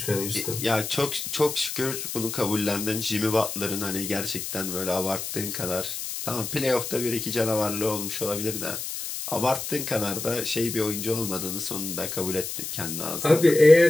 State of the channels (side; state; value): left; noise; hiss, 6 dB below the sound